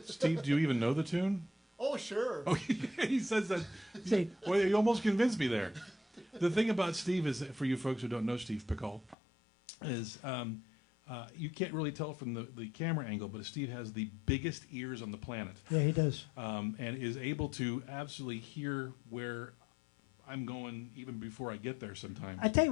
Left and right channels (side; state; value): right; drops out; at 9.2 s